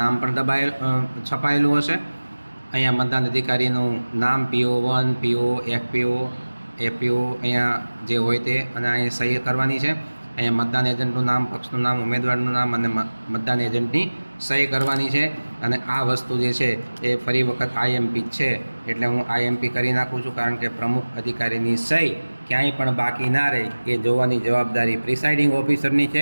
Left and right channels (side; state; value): both; inverted; correlation -1.00